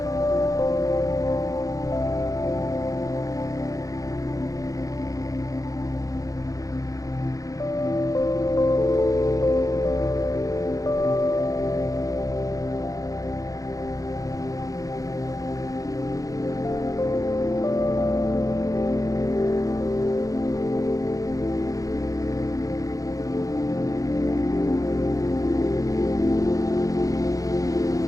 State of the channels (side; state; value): right; late; 0.17 ms